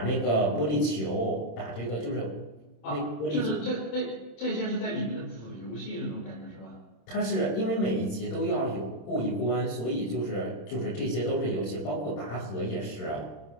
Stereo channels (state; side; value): late; right; 26 ms